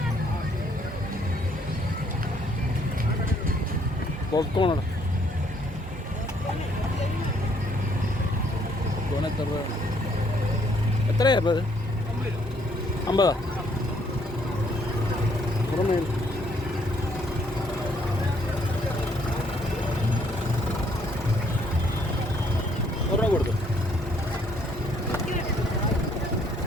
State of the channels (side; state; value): both; normal; correlation 0.67